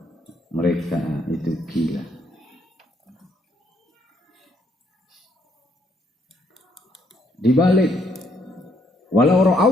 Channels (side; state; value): both; normal; correlation 0.71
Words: mereka itu gila. Dibalik, walau